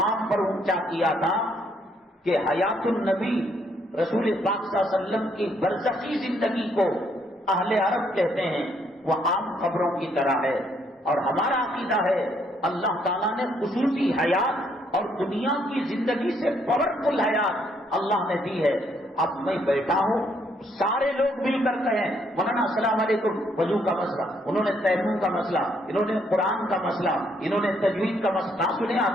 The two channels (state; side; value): normal; both; correlation 0.70